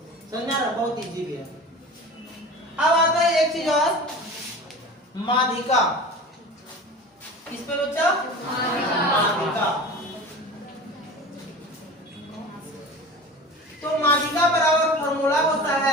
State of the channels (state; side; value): normal; both; correlation 0.35